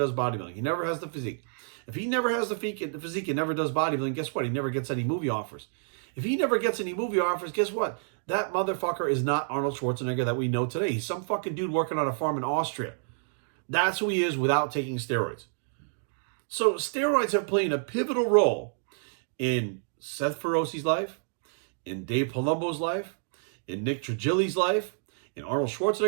bodybuilding. He never has the physique. If he never has the physique and never does bodybuilding, guess what? He never gets any movie offers. If he never gets any movie offers, guess what? That motherfucker is not Arnold Schwarzenegger that we know today. He's some fucking dude working on a farm in Austria. That's who he is without taking steroids. So steroids have played a pivotal role in Seth Feroce's life, in Dave Palumbo's life, in Nick Trigili's life, in Arnold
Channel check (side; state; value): left; silent; digital silence